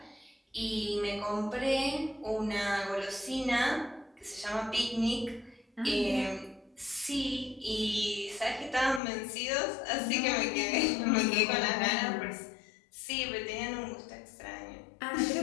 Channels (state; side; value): drops out; right; at 9.0 s